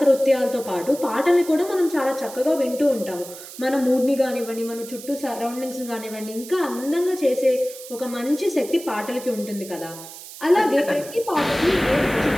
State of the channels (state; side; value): noise; right; hiss, 15 dB below the sound